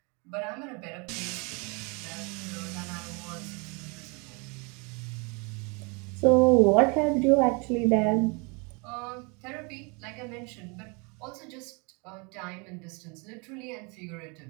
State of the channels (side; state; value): left; quieter; 31.4 dB